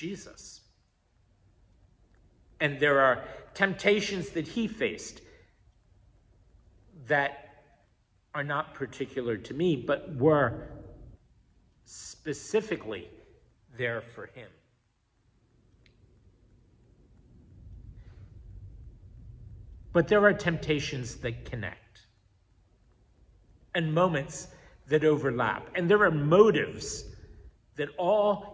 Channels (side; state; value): both; identical; correlation 1.00